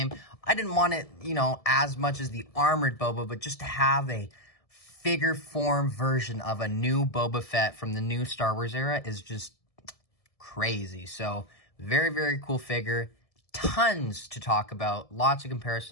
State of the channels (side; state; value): right; late; 1.7 ms